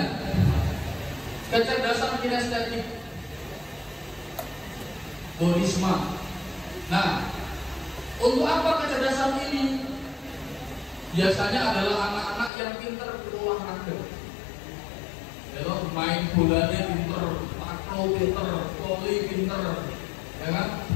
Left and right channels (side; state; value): right; drops out; at 12.5 s